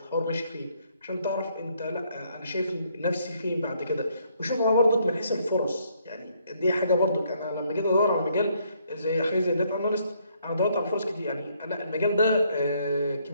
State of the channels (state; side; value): inverted; both; correlation -0.69